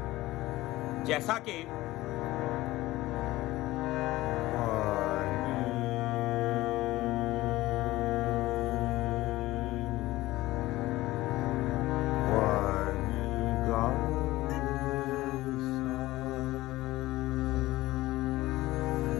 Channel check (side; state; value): right; quieter; 17.7 dB